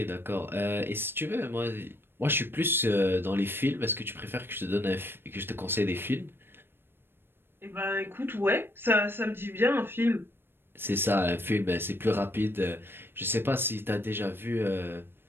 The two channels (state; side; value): late; left; 0.10 ms